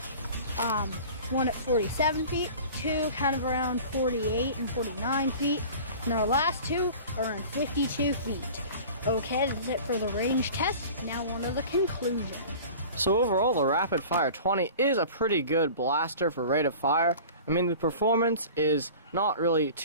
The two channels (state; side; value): inverted; both; correlation -0.40